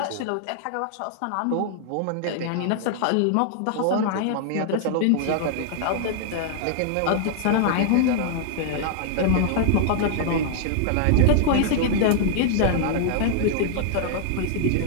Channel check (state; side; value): different; both; correlation -0.01